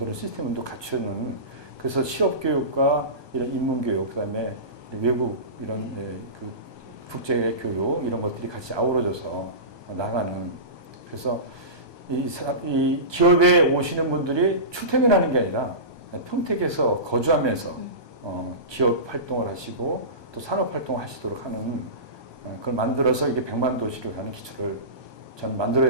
시스템을 또 갖추는, 그래서 실업 교육과 이런 인문 교육, 그다음에 외국 이런 그 국제 교육 이런 것들이 같이 아우러져서 나가는, 그래서 이 기업에 오시는 분들이 출퇴근하는 게 아니라 평택에서 거주하면서 기업 활동을 하시고 또 산업 활동을 하시도록 하는, 그걸 만들어서 이게 100만 도시로 가는 기초를 저는 만들어야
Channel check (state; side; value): late; left; 1.2 ms